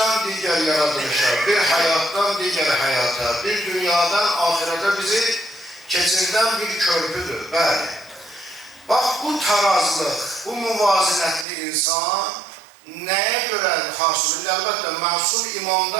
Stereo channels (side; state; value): left; drops out; at 11.5 s